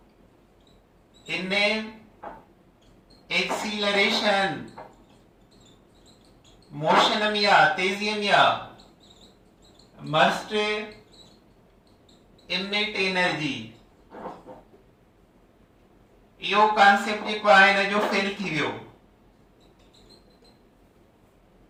in acceleration motion में या तेजी में या must emit energy यो कॉन्सेप्ट जेको आहे न जो फेल थी वियो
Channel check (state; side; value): identical; both; correlation 1.00